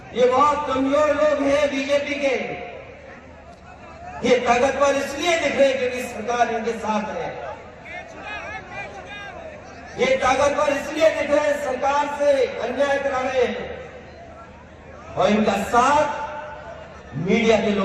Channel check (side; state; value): both; identical; correlation 1.00